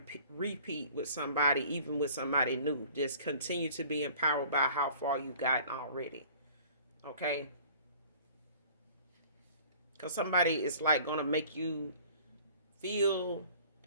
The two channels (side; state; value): both; inverted; correlation -0.49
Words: with somebody, even with somebody new. Just continue to be empowered by how far you gotten already. Okay, because somebody is like gonna make you feel